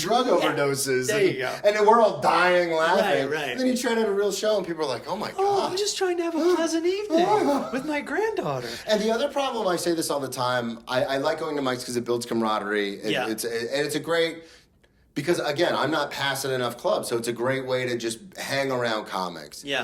overdoses. There you go. And then we're all dying laughing. Right. And then you try to have a real show and people are like, oh my God. Oh, I'm just trying to have a pleasant evening with my granddaughter. And the other problem, I say this all the time, I like going to mics because it builds camaraderie. It's a great, because again, I'm not passing enough clubs, so it's a great way to just hang around comics.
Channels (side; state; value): both; identical; correlation 1.00